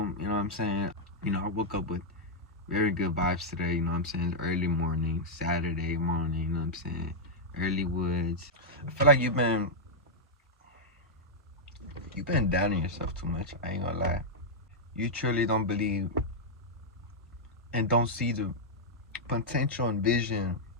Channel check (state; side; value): normal; both; correlation -0.06